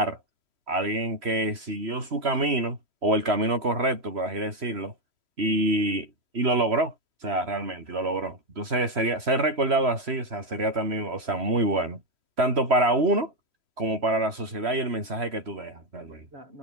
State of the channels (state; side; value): late; left; 3.1 ms